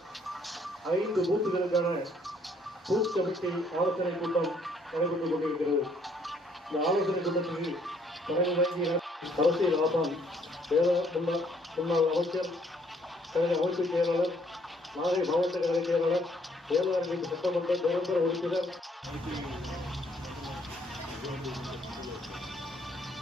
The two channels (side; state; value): both; normal; correlation 0.66